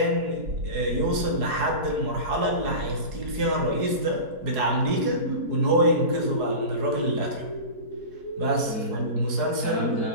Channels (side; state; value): left; late; 4.7 ms